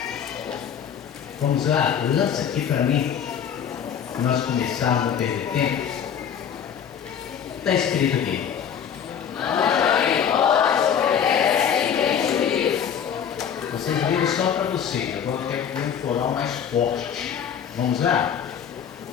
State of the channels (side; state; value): right; quieter; 8.2 dB